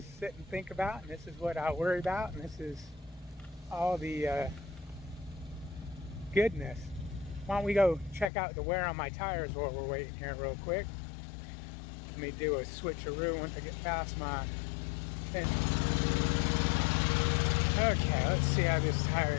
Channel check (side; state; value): right; drops out; at 8.3 s